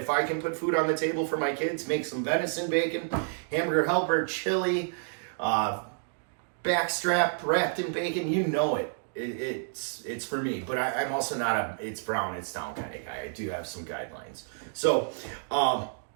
I can put food on the table for my kids, make some venison bacon, hamburger helper, chili, backstrap wrapped in bacon, you know it. It's for me, but I'm also not a it's brown, it's down kind of guy. I do have some guidelines. So,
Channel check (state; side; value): silent; left; digital silence